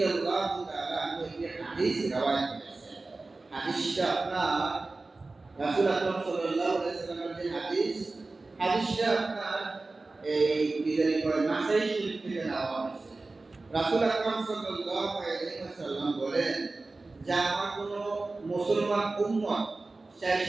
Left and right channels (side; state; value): left; quieter; 3.4 dB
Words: তাআলা আনহু একটি হাদিস রওয়ায়াত করেছেন। হাদিসটা আপনার রাসূল আকরাম সাল্লাল্লাহু আলাইহি ওয়াসাল্লামের যে হাদিসটা আপনার এই বিদায় করে নাসাই শরীফ থেকে নেওয়া হয়েছে। রাসূল আকরাম সাল্লাল্লাহু আলাইহি ওয়াসাল্লাম বলেন যে আমার কোন মুসলমান উম্মত, চাই